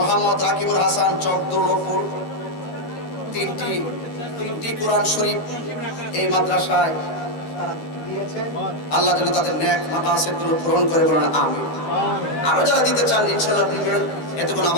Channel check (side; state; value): right; late; 13 ms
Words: রাকিবুল হাসান চকদৌলপুর, তিনটি কোরআন শরীফ এই মাদ্রাসায় আল্লাহ যেন তাদের নেক মাকাসিদগুলো পূরণ করে, বলেন আমিন। আরো যারা দিতে চান ইনশাআল্লাহ দিবেন, এতে কোনো